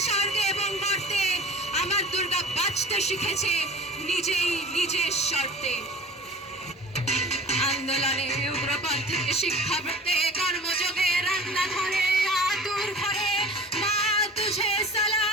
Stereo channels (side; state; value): both; normal; correlation 0.42